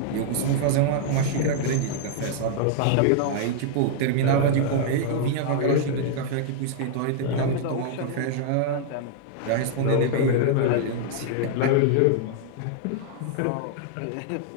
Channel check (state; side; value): different; both; correlation -0.01